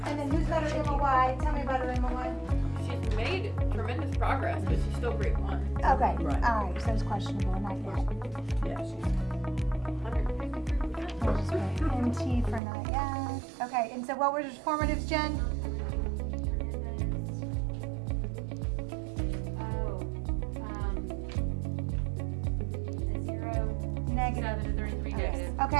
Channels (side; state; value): left; drops out; at 12.6 s